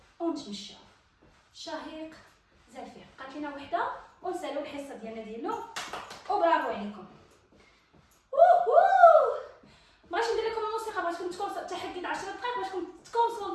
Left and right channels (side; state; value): both; identical; correlation 1.00